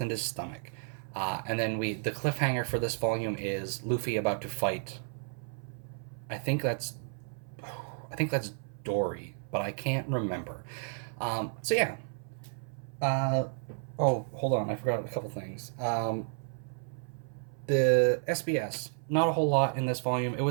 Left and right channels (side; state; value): left; silent; 56 dB below the other